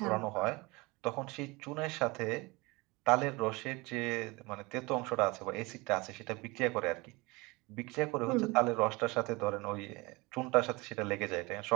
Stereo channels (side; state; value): left; quieter; 24.4 dB